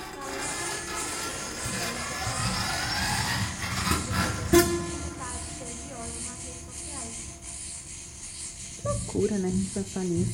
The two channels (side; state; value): both; identical; correlation 1.00